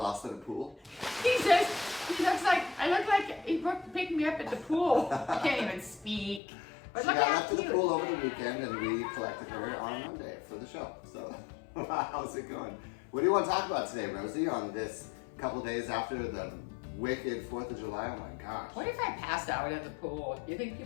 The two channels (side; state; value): right; drops out; at 6.4 s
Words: in a pool. He says, I look like he picked me up at the pool. I can't even speak. But She look got how left to the cute. pool over the weekend, and we collected her on Monday for the show. So, how's it going? What do you want to talk about today, Rosie, on this couple days after the wicked 4th of July? Oh my gosh. What if I passed out at the pool? You think